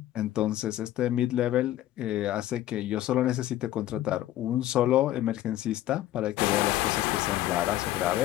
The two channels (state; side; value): quieter; right; 13.8 dB